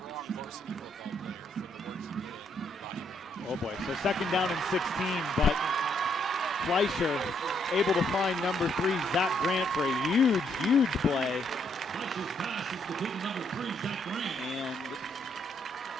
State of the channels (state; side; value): normal; both; correlation 0.73